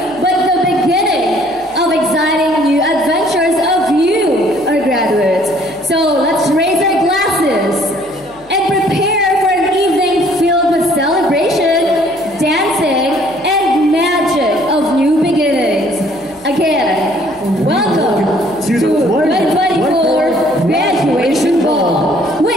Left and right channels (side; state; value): left; noise; hum, 28 dB below the sound